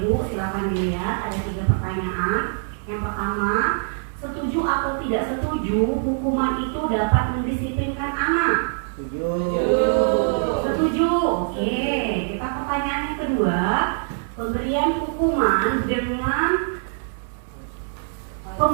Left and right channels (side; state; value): left; silent; 63 dB below the other